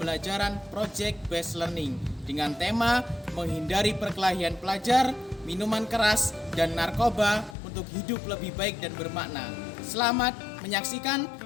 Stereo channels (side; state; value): right; drops out; at 7.6 s